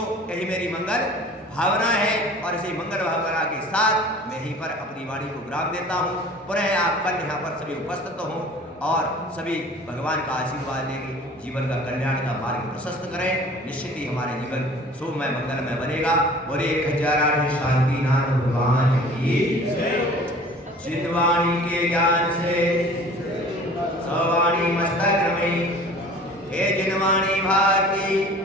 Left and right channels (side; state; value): both; normal; correlation 0.46